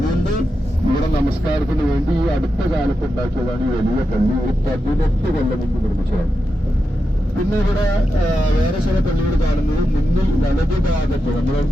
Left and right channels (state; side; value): normal; both; correlation 0.88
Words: ഇവിടെ നമസ്കാരത്തിന് വേണ്ടി ഈ അടുത്ത കാലത്ത് ഉണ്ടാക്കിയതാണ് ഈ വലിയ പള്ളി. ഒരു 18 കൊല്ലം മുമ്പ് നിർമ്മിച്ചതാണ്. പിന്നെ ഇവിടെ വേറെ ചില പള്ളികൾ കാണുന്നത് മുന്നിൽ വലതുഭാഗത്ത്, നമ്മുടെ